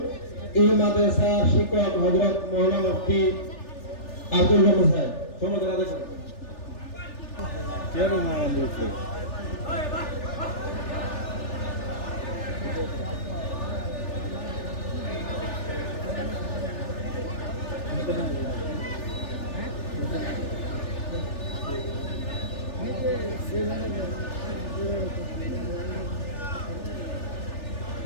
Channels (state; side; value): late; right; 3.4 ms